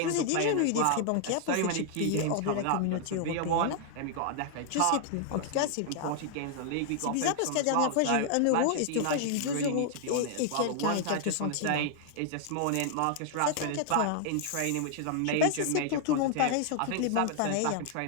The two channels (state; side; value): different; both; correlation 0.00